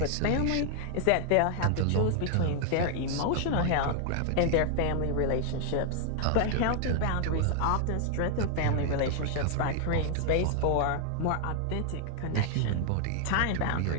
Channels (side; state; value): both; different; correlation 0.00